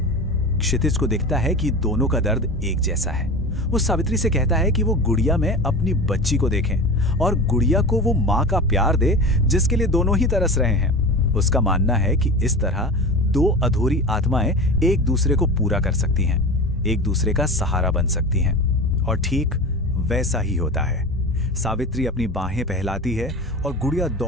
क्षितिज को दिखता है कि दोनों का दर्द एक जैसा है। वो सावित्री से कहता है कि वो गुड़िया में अपनी बच्ची को देखें और गुड़िया को वो माँ का प्यार दे जिसके लिए दोनों ही तरस रहे हैं। उसका मानना है कि इस तरह दो अधूरी आत्माएं एक दूसरे को पूरा कर सकती हैं, एक दूसरे का सहारा बन सकती हैं। और ठीक वैसा ही होता है। सावित्री अपनी बाहें फैलाती है और गुड़िया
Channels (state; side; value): normal; both; correlation 0.30